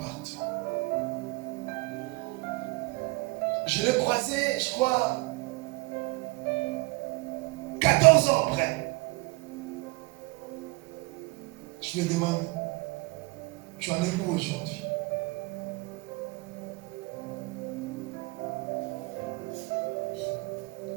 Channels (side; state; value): left; quieter; 25.8 dB